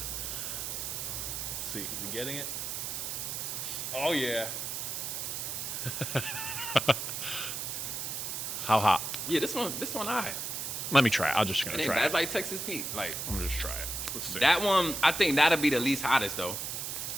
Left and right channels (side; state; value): right; noise; hiss, 4 dB below the sound